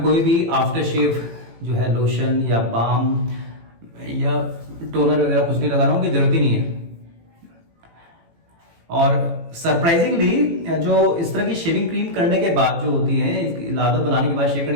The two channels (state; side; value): late; left; 18 ms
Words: कोई भी आफ्टर शेव जो है लोशन या बाम या टोनर वगैरह कुछ नहीं लगा रहा हूँ, कि जरूरत ही नहीं है। और सरप्राइजिंगली जो इस तरह की शेविंग क्रीम करने के बाद जो होती है, इसकी लादत बनाने के बाद, शेव